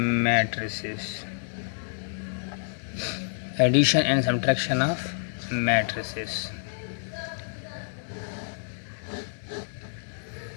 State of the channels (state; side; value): silent; right; digital silence